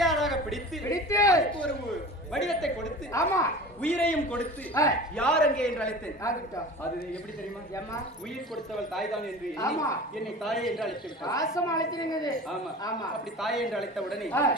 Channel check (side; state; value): both; normal; correlation 0.37